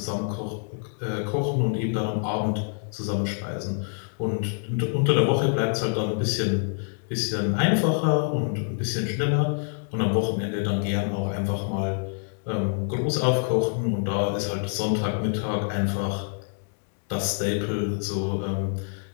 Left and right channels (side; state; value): right; silent; 58 dB below the other